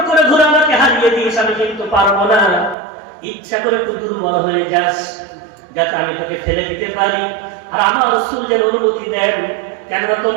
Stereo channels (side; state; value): left; drops out; at 2.8 s